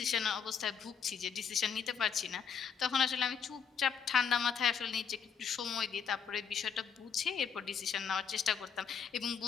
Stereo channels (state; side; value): quieter; right; 7.0 dB